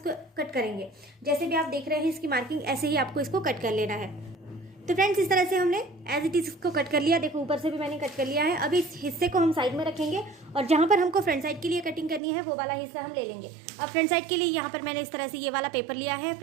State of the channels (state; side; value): drops out; left; at 12.2 s